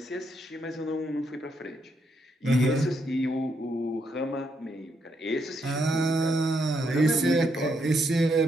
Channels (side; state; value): both; normal; correlation 0.77